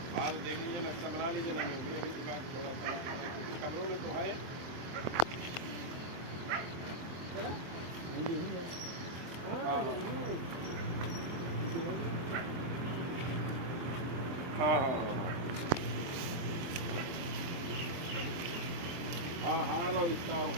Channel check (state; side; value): late; left; 23 ms